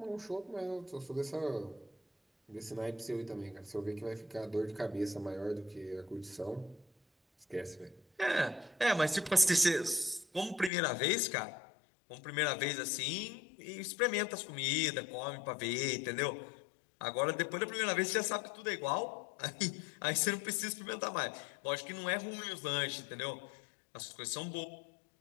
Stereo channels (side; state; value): right; drops out; at 10.7 s